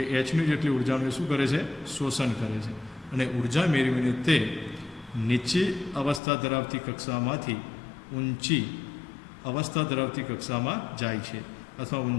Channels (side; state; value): right; drops out; at 6.2 s